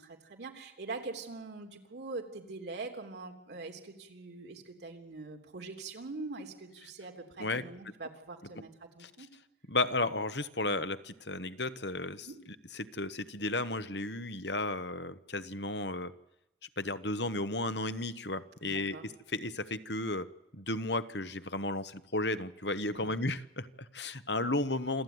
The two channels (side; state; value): both; normal; correlation 0.06